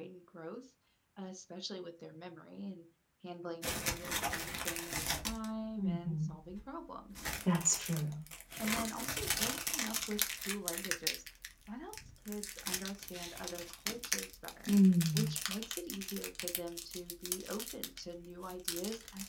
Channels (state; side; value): identical; both; correlation 1.00